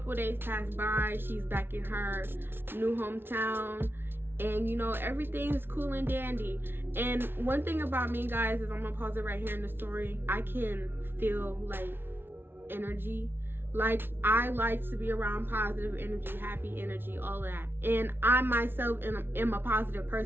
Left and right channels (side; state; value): left; late; 0.11 ms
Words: of days pass by, she's back in her new hometown, and you know, everything's cool and dandy. And one thing about me, guys, is I'm gonna pause it right here in the story. I can feel like energy. Like, I like to be around positive energy, happy energy, all of that. And I myself am a positive